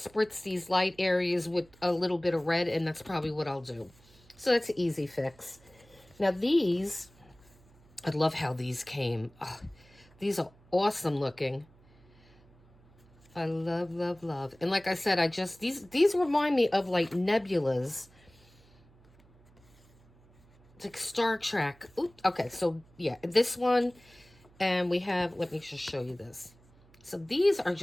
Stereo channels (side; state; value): right; noise; hum, 28 dB below the sound